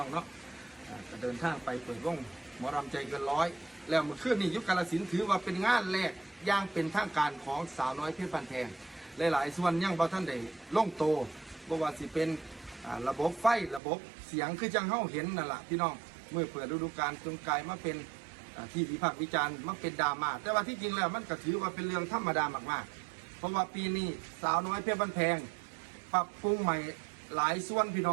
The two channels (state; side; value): drops out; left; at 13.8 s